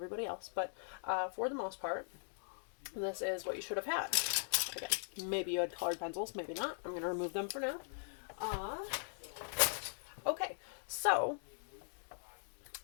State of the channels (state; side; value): silent; right; digital silence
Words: else. But for the most part, this is what you should have had. Again, maybe you had colored pencils, maybe not. I'm going to remove them for now. Okay, so